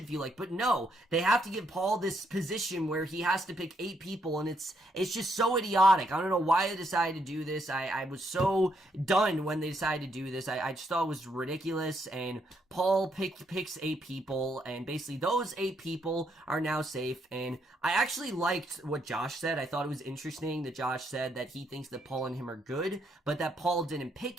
feel like. But no, they have to give Paul this position where he has to pick 8 people, and it's just so idiotic. I don't know why they decided to do this. I was so done when they decided to do this. I just thought it was ridiculous, and Paul picks 8 people, and basically those 8 people are now safe. And I actually liked what Josh said. I thought it was interesting that Josh said that he thinks that Paul and him are good, but that Paul didn't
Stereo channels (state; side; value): normal; both; correlation 0.75